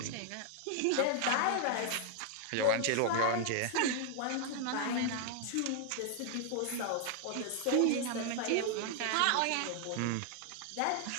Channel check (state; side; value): different; both; correlation 0.00